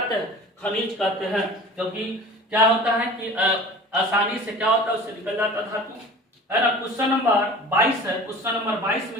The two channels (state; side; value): normal; both; correlation 0.40